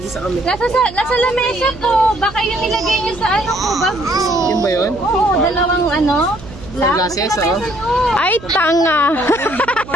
kami. Nasa lamesa po. Baka yung nilagay niyo sa ano ko, bag ko. Yun ba yun? Oo, dalawang ano. Sunglasses, oh. Ay, tanga.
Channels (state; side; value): noise; right; hum, 17 dB below the sound